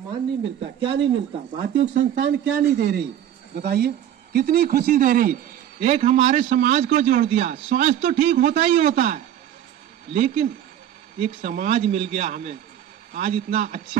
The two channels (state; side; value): quieter; left; 10.7 dB